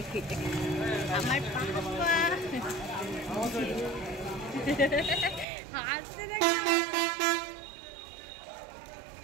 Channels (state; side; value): drops out; left; at 5.5 s